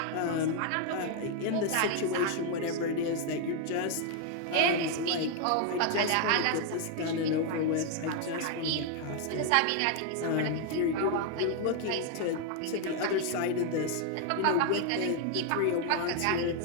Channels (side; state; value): both; different; correlation 0.00